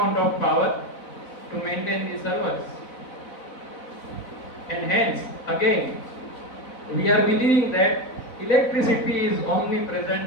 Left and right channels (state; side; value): late; right; 4.0 ms